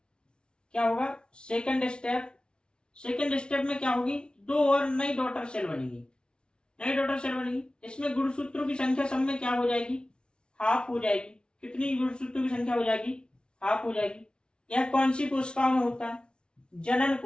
क्या होगा? सेकंड स्टेप में क्या होगी? 2 और नई डॉटर सेल बनेगी। इसमें गुणसूत्रों की संख्या सब में क्या हो जाएगी? हाफ हो जाएगी। कितनी गुणसूत्रों की संख्या हो जाएगी? हाफ हो जाएगी। यह कौन सी कोशिकाओं में होता है? जनन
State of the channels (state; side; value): late; right; 0.056 ms